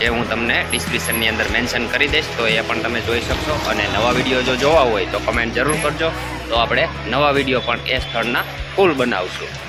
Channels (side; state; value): both; identical; correlation 1.00